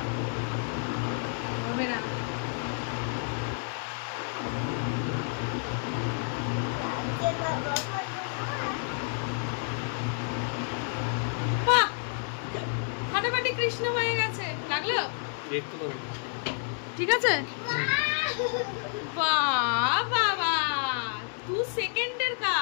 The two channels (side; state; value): right; silent; 58 dB below the other